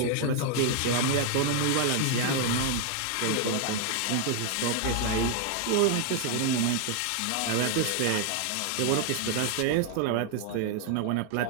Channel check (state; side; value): different; both; correlation 0.00